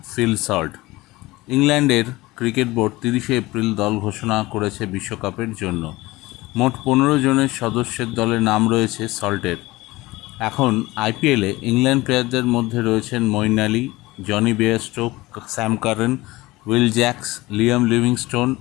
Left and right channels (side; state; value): right; quieter; 19.9 dB